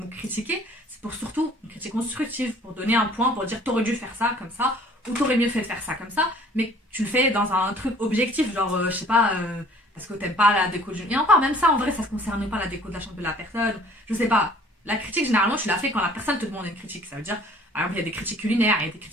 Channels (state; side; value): normal; both; correlation 0.54